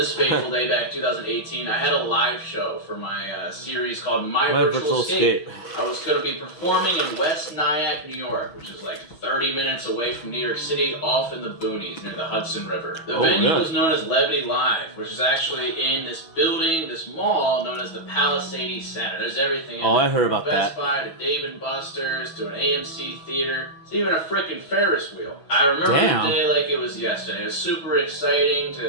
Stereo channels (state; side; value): late; right; 6.1 ms